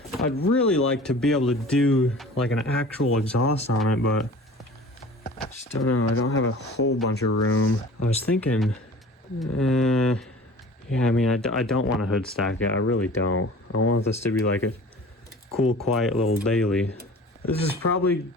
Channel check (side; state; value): both; normal; correlation 0.43